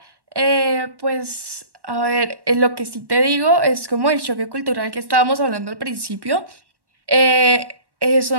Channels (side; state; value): left; late; 1.1 ms